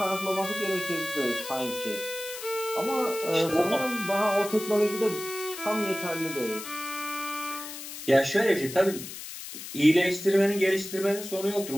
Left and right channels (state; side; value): noise; left; hiss, 10 dB below the sound